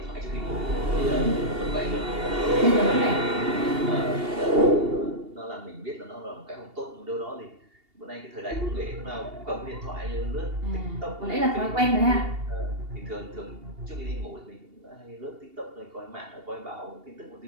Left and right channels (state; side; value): late; left; 2.8 ms